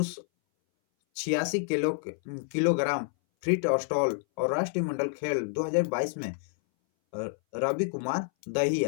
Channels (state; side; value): silent; right; 59 dB below the other